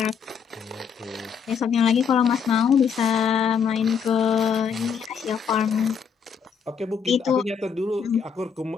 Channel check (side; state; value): right; quieter; 6.7 dB